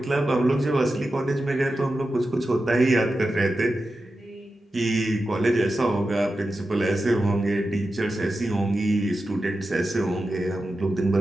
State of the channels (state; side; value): normal; both; correlation 0.91